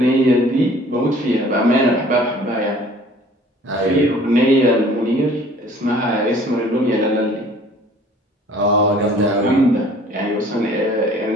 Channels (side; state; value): both; normal; correlation 0.52